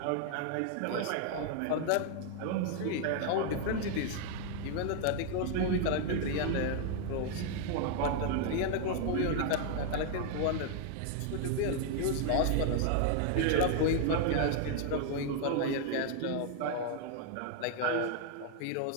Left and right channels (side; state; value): both; different; correlation 0.00